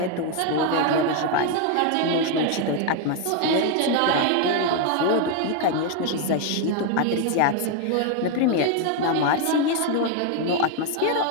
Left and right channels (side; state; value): both; different; correlation 0.01